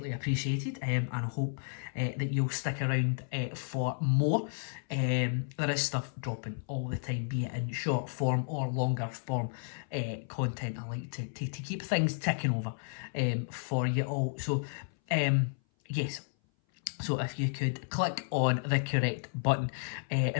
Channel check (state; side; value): silent; right; 56 dB below the other